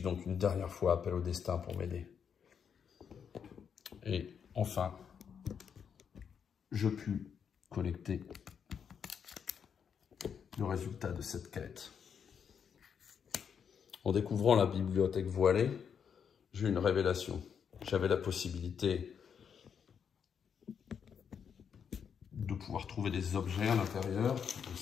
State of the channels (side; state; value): right; quieter; 7.3 dB